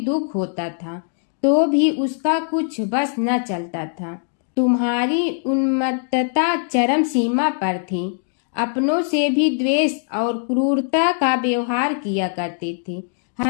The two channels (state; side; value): silent; right; 65 dB below the other